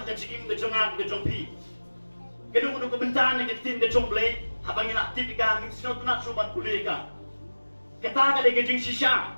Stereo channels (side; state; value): both; inverted; correlation -1.00